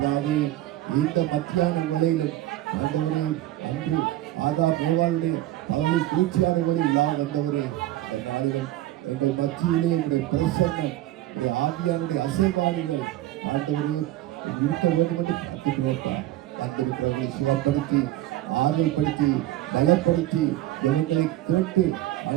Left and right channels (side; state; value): left; quieter; 14.8 dB